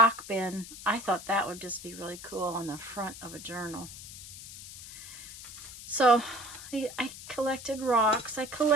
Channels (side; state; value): left; noise; hiss, 13 dB below the sound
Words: bin, I thought that would just be really cool on the front of a journal. So I collected rocks, I